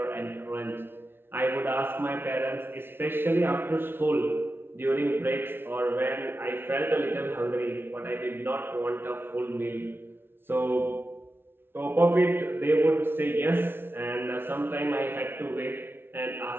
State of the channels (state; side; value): late; left; 0.11 ms